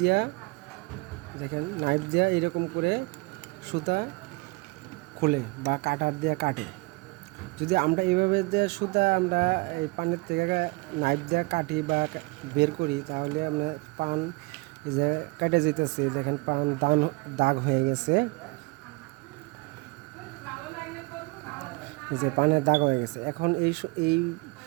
দিয়া এরকম করে সুতা খোলে বা কাটার দিয়ে কাটে। যদি আমরা এইভাবে দিয়ে সুতা আমরা এই পানির থেকে নাইফ দিয়ে কাটি বা বের করি, তাহলে আমরা পান যে কেটে যেতেছে, দেখেন পান দাগ হয়ে গেছে, যে পানের দাগ হয়ে গেছে। এখন এই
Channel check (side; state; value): left; quieter; 25.8 dB